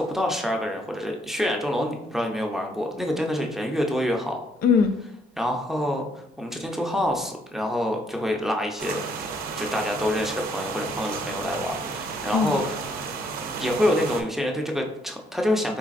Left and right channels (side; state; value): both; normal; correlation 0.70